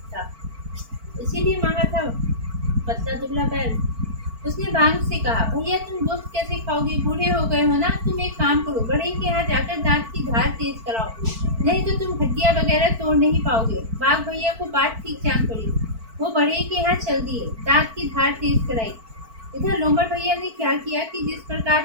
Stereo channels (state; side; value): late; left; 4.5 ms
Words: था, इसीलिए मांगा था पतला दुबला बैल। उसने बाघ से कहा, भैया तुम गोश्त कैसे खाओगे, बूढ़े हो गए हो ना, तुम एक काम करो, बढ़ई के यहाँ जाकर दांत की धार तेज कराओ, नहीं तो तुम हड्डियाँ वगैरह तोड़ नहीं पाओगे। बाघ भैया को बात ठीक जान पड़ी, वो बढ़ई के यहाँ चल दिए, दांत की धार तेज कराई। इधर लोमड़ भैया ने क्या किया कि जिस प्रकार